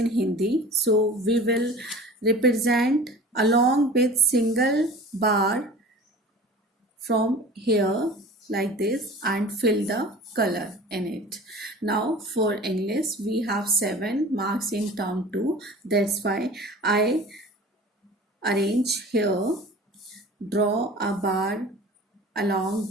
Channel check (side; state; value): both; normal; correlation 0.41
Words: Hindi, so we will represent along with single bar from here like this and fill the color in it. Now for English we have 7 marks in term 2, that's why I arrange here, draw a bar along